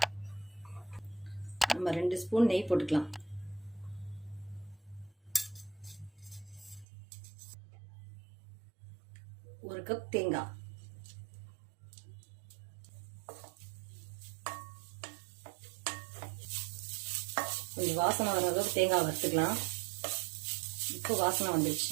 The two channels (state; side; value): drops out; left; at 6.9 s